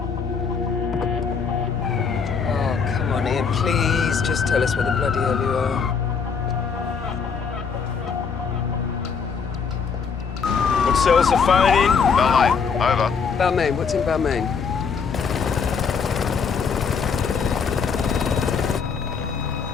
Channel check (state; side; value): quieter; right; 5.9 dB